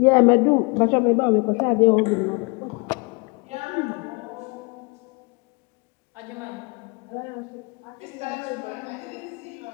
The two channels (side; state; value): right; quieter; 29.9 dB